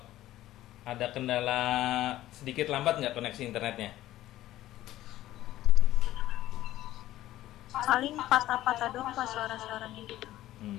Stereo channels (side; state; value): right; quieter; 14.6 dB